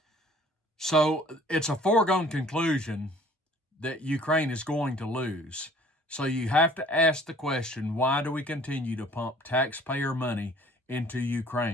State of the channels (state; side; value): normal; both; correlation 0.53